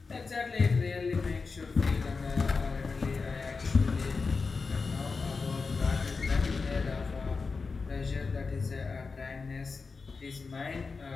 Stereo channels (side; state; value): right; quieter; 4.5 dB